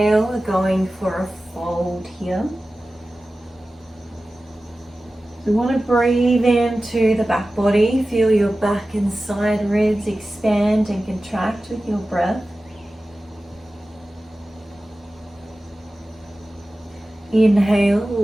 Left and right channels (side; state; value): both; normal; correlation 0.95